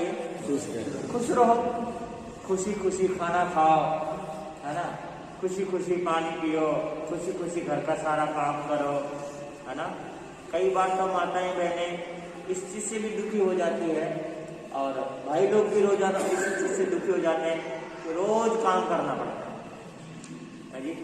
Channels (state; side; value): identical; both; correlation 1.00